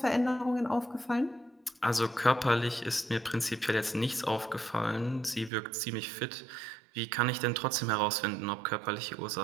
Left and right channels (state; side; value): drops out; left; at 5.5 s